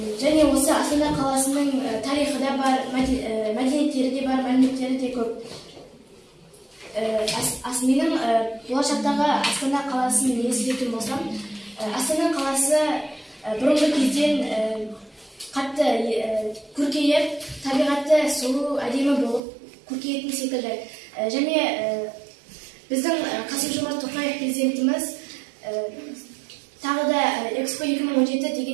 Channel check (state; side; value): drops out; left; at 19.4 s